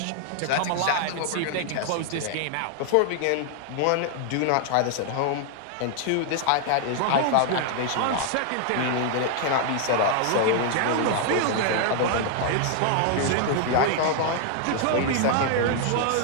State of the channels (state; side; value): different; both; correlation 0.00